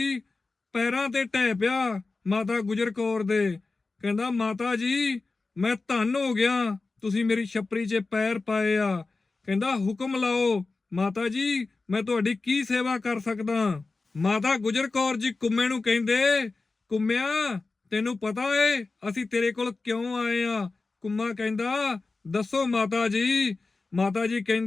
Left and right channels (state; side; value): quieter; right; 3.7 dB